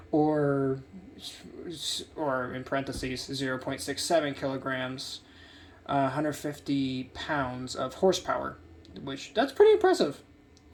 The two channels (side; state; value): both; identical; correlation 1.00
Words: or in parentheses, 0.67 kilograms, 150 pounds of horsepower. Which, that's pretty impressive.